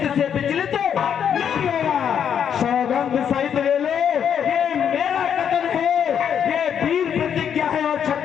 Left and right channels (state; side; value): quieter; right; 8.3 dB